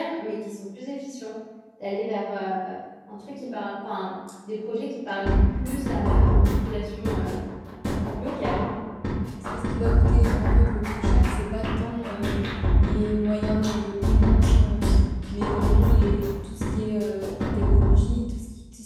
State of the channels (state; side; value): identical; both; correlation 1.00